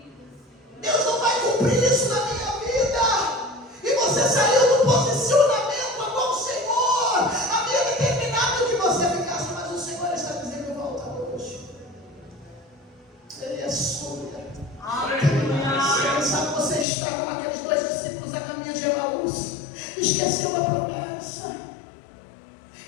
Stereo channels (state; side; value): drops out; right; at 16.9 s